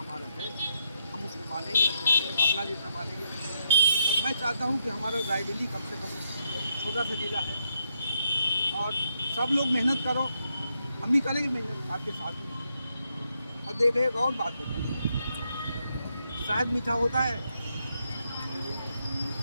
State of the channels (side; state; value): both; inverted; correlation -0.79